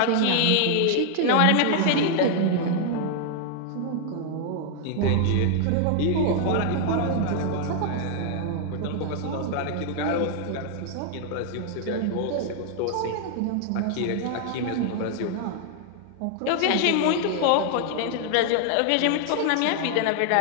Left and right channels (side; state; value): both; different; correlation 0.00